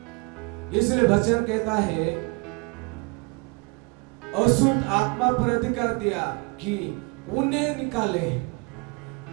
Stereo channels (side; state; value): left; quieter; 30.6 dB